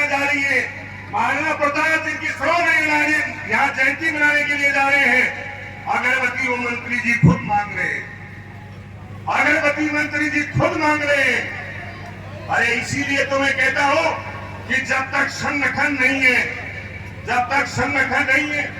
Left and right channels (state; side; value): identical; both; correlation 1.00